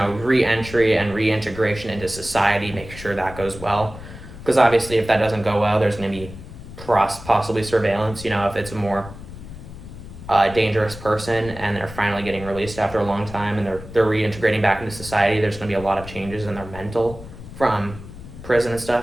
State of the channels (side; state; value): left; noise; rumble, 14 dB below the sound